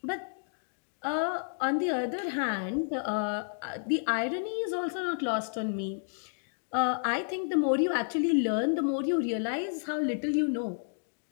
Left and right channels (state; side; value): silent; right; digital silence